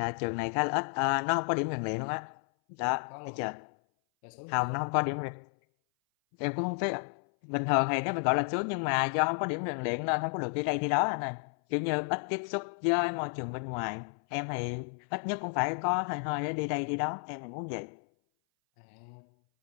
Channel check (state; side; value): silent; right; 57 dB below the other